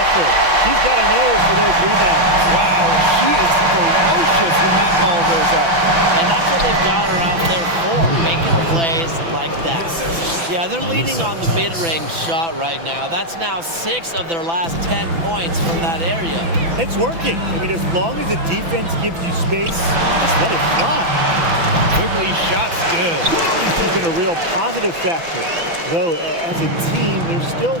She's got a nose for those rebounds. Wow, she is ferocious when that ball goes up. And that's what they've got her out there for, making plays like that. Yeah, they're leaning on the mid-range shot right now. That's now 6 of their last 10 points from that area. It's working. I mean, as long as the defense gives you space, just let it fly. Quigley shot's good. She's been a real positive factor. Though, as a team, they're still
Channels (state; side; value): late; left; 6.0 ms